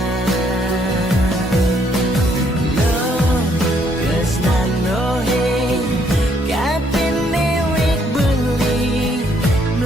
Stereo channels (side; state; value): both; normal; correlation 0.69